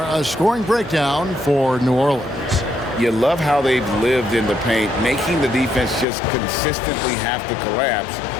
A scoring breakdown for New Orleans. You love how they've lived in the paint, making the defense just consistently have to collapse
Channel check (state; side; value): drops out; right; at 6.1 s